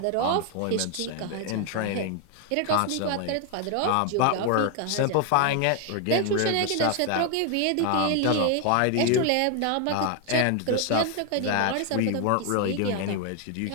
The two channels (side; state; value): both; different; correlation 0.00